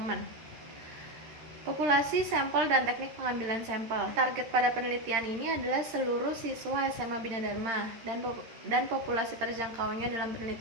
Populasi, sampel, dan teknik pengambilan sampel. Target pada penelitian ini adalah seluruh siswa SMA Bina Dharma, dan populasi terjangkaunya dalam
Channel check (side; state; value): left; late; 13 ms